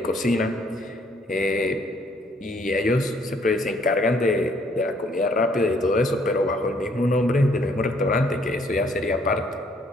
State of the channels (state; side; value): normal; both; correlation 0.65